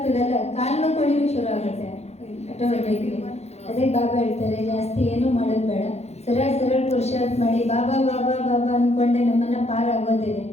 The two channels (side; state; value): right; late; 0.31 ms